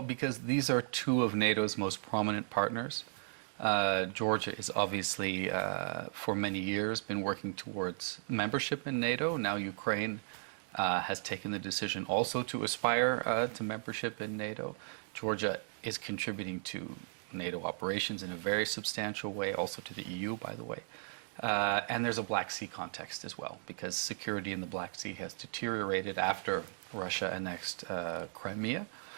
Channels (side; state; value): left; silent; digital silence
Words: because these are two of NATO's most prominent partners. Georgia is obviously, for many years, been working towards membership in NATO. Now Ukraine has taken the decision also to aspire to membership in NATO. Georgia is contributing to NATO operations in a very substantial way, also to the EU, by the way. And there's a Black Sea context as well, because security in the Black Sea has deteriorated after Russia annexed Crimea.